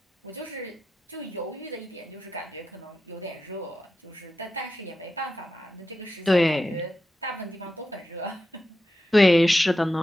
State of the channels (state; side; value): normal; both; correlation 0.90